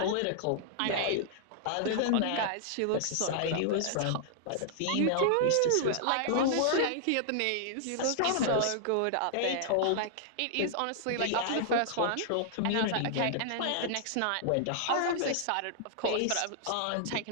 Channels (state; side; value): different; both; correlation -0.01